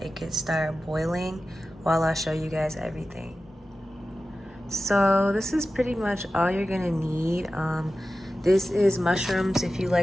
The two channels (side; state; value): both; normal; correlation 0.94